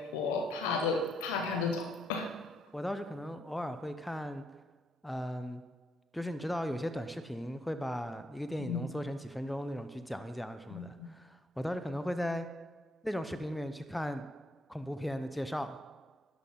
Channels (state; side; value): normal; both; correlation 0.73